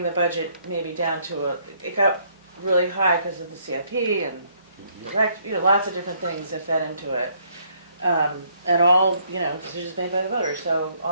the budget maybe down to it got really high because of the CIP and lots of different things that fed into it. And all, decisions made by the voters, so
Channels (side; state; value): both; inverted; correlation -0.68